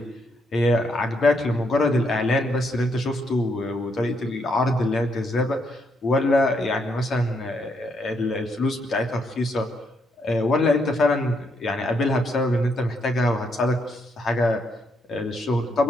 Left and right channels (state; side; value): normal; both; correlation 0.76